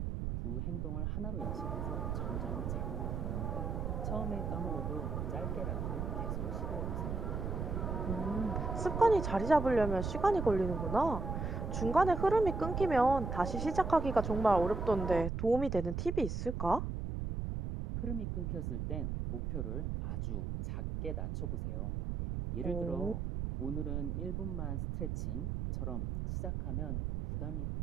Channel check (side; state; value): right; noise; rumble, 2 dB below the sound